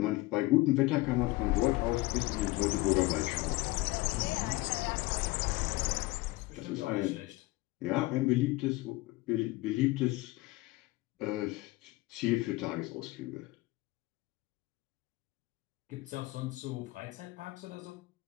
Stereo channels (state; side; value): quieter; right; 20.5 dB